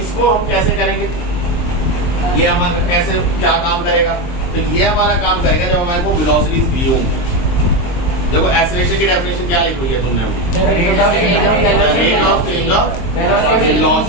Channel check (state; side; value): late; right; 23 ms